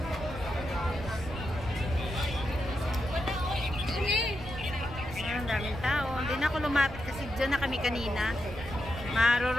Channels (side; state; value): right; noise; rumble, 12 dB below the sound